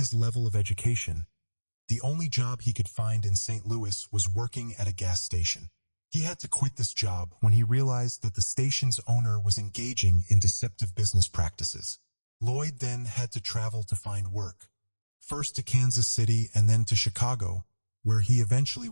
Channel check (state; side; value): inverted; both; correlation -1.00